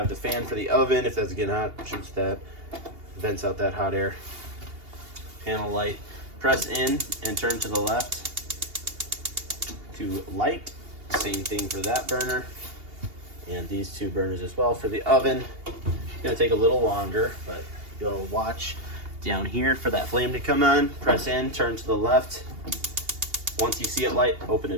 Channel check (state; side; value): late; left; 2.8 ms